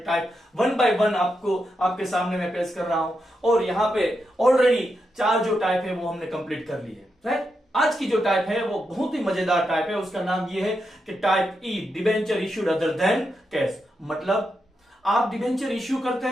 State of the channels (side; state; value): both; normal; correlation 0.85